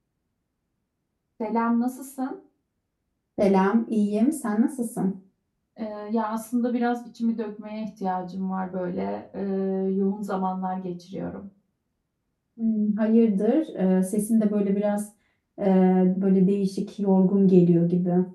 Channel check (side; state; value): both; identical; correlation 1.00